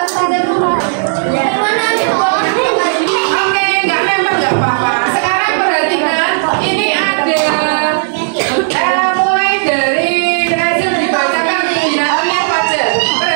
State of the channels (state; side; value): silent; left; digital silence